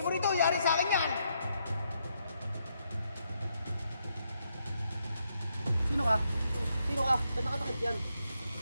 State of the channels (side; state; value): both; inverted; correlation -0.78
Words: mo rito, yari sa akin yan! Sino ka? Sino ka? Ba't nakatakit yan?